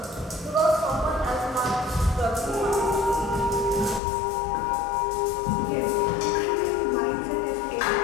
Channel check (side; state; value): right; drops out; at 4.0 s